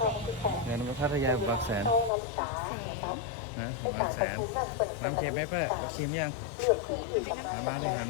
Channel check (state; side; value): drops out; right; at 2.1 s